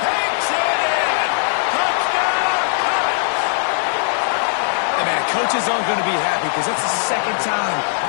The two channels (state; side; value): silent; right; digital silence